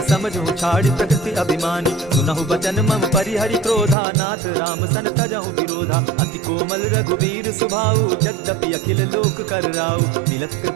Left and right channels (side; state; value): left; drops out; at 4.0 s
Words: समझू छाड़ प्रकृति अभिमानी। सुनहु बचन मम परिहरि क्रोधा, नाथ राम सन तजहु विरोधा। अति कोमल रघुवीर सुभाऊ, यद्यपि अखिल लोक कर राऊ। मिलत